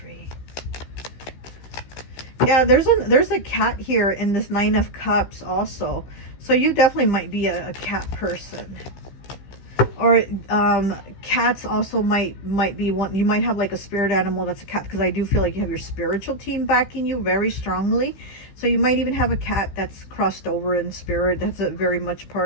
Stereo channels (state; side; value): late; right; 15 ms